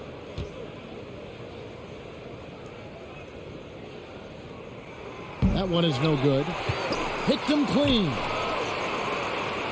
That one is no good. Picked him clean.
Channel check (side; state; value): both; identical; correlation 1.00